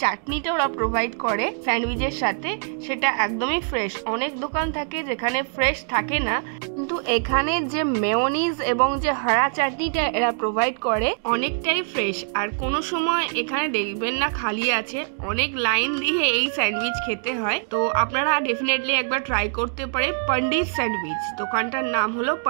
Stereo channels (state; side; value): silent; left; digital silence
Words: চাটনিটা ওরা প্রোভাইড করে স্যান্ডউইচের সাথে সেটা একদমই ফ্রেশ। অনেক দোকান থাকে যেখানে ফ্রেশ থাকে না, কিন্তু এখানে যে মেয়োনিজ এবং যে হরা চাটনিটা এরা প্রোভাইড করে অনেকটাই ফ্রেশ। আর কোনো সময় এখানে দেখবেন না খালি আছে, অনেক লাইন দিয়ে এই স্যান্ডউইচ খেতে হয়। তো আপনারা ডেফিনেটলি একবার ট্রাই করতে পারে পন্ডিত স্যান্ডউইচ। দোকানটার নাম হলো